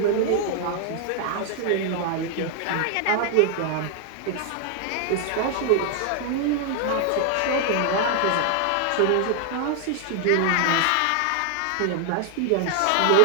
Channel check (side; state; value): both; different; correlation 0.00